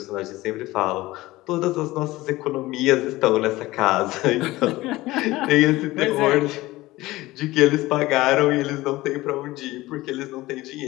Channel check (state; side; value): quieter; right; 18.6 dB